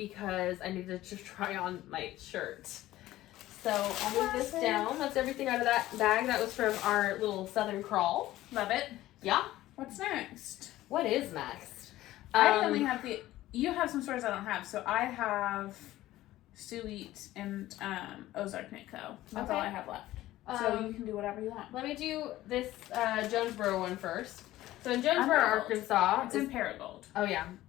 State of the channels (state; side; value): quieter; right; 15.5 dB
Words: I needed to try on my shirt. So I'll move this down. That's everything out of that bag. That was from our little Southern Crawl. Love it. Yeah. What's next? What is next? I only have you have some stores I don't have. So I have Suite and Ozark Knit Co. That's all I have left. So you can do whatever you want. Let me do this Jonesboro one first. So in Jonesboro, Arkansas. It's in Paragold. Oh yeah,